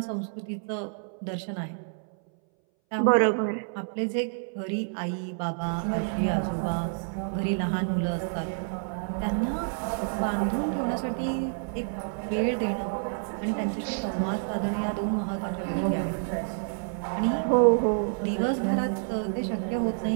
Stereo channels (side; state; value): left; silent; 59 dB below the other